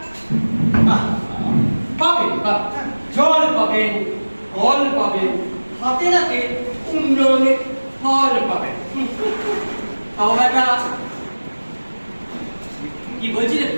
পাবেন পাবেন, জল পাবেন, ফল পাবেন, হাতে হাতে উন্নয়নের ফল পাবেন। তাও একটা কি বলছিলেন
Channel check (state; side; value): inverted; both; correlation -1.00